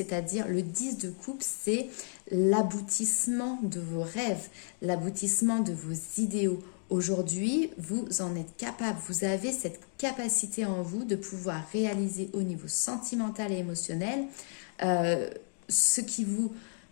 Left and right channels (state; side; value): silent; right; 56 dB below the other